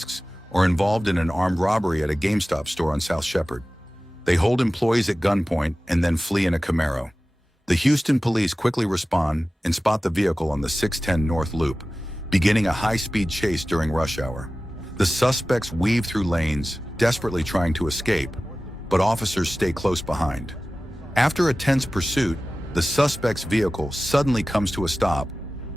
are involved in an armed robbery at a GameStop store on South Shepherd. They hold employees at gunpoint and then flee in a Camaro. The Houston police quickly respond and spot the vehicle on the 610 North Loop, beginning a high-speed chase during rush hour. The suspects weave through lanes, desperately trying to escape, but officers stay close behind. After a tense pursuit, the suspect's vehicle suddenly comes to a stop,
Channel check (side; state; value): both; normal; correlation 0.96